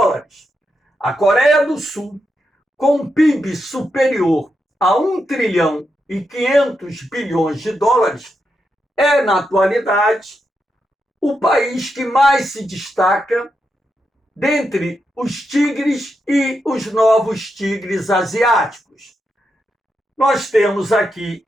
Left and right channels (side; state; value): both; normal; correlation 0.85